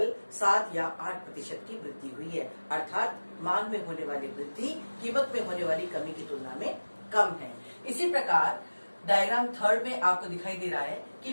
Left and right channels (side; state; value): both; inverted; correlation -1.00